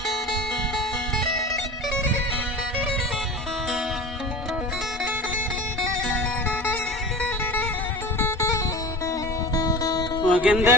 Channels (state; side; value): normal; both; correlation 0.34